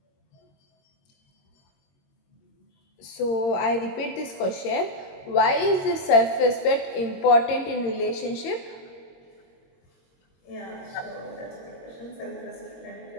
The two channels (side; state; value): right; late; 22 ms